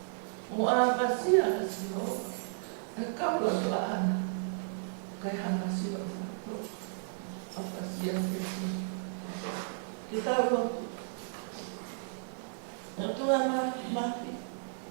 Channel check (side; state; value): left; silent; digital silence